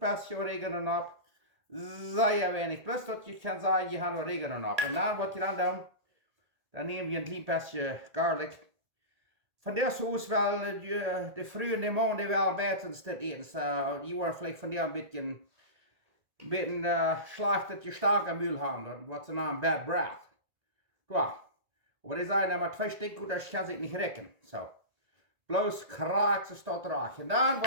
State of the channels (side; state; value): left; late; 1.9 ms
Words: oregano op. Zeer weinig, plus dat je kan zeggen, je hebt oregano op. En dan wat je dan doet, dan neem je een klein beetje garlic. Van der soos wel de vroege de maanden wel beter dit eten. Je wordt vielleicht van der een beetje slecht dat je sterke muil hebt. Wat ze naam bad breath. Ja. Maar die zijn maar 2 stukken, dat kan zich niet rekken. Zo. Bloos kraak ze staat raak. En dan